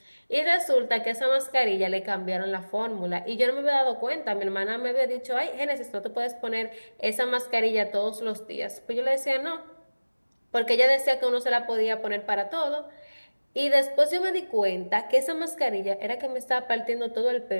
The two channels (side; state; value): both; inverted; correlation -1.00